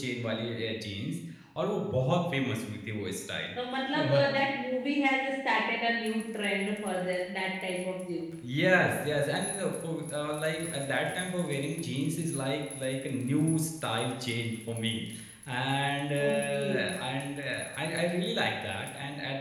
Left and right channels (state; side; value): identical; both; correlation 1.00